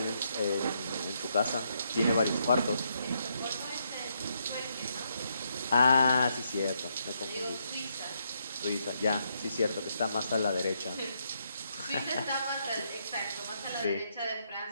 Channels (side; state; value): both; inverted; correlation -0.77